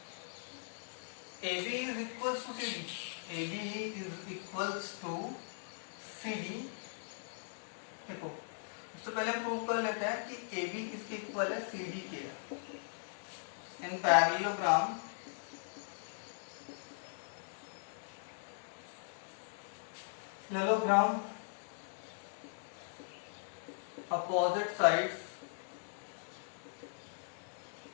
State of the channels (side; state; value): right; silent; digital silence